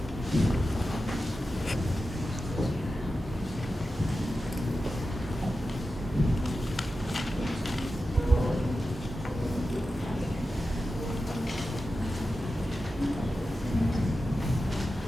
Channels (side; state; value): both; normal; correlation 0.92